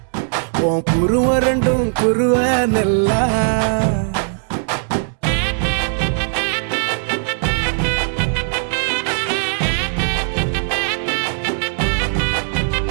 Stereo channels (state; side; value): silent; left; 62 dB below the other